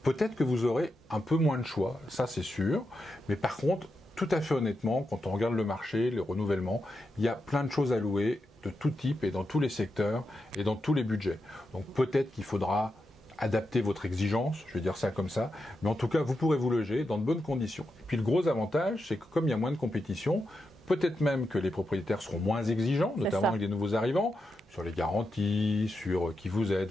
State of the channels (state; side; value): normal; both; correlation 0.87